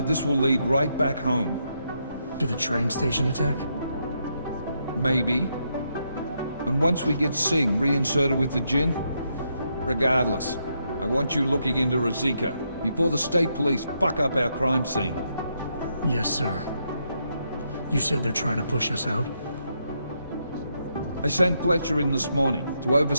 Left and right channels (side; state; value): both; inverted; correlation -0.79